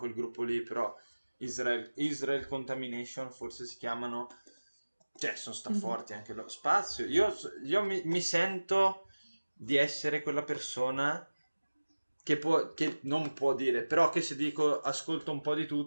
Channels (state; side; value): inverted; both; correlation -1.00